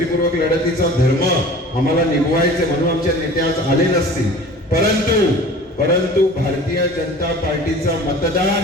लढतीचा धर्म आम्हाला निभवायचे म्हणून आमचे नेते आज आले नसतील, परंतु भारतीय जनता पार्टीचा मतदार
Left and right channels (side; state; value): both; normal; correlation 0.43